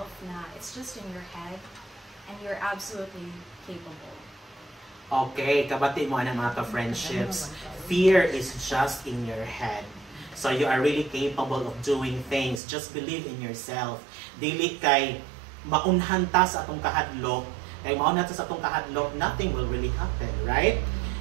nah, it's just in your head and you're absolutely capable. Okay, kabati mo ng mga ka-friendships. Fear is just in your head. So you are really capable of doing things. Just believe in yourself. Dili kay maunhan ta sa atong kahadlok. Kay maunhan ta sa atong kahadlok, nothing will really happen, right?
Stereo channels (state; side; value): drops out; left; at 12.6 s